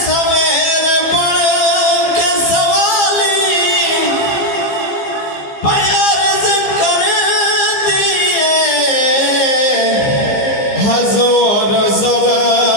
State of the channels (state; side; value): late; right; 15 ms